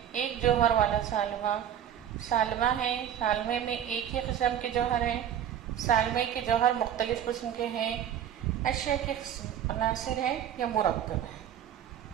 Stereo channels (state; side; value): quieter; left; 9.9 dB